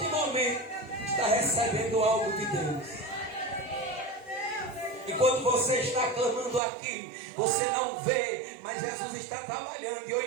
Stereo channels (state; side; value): drops out; left; at 6.6 s